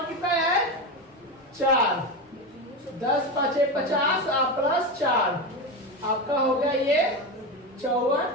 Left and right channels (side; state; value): both; normal; correlation 0.18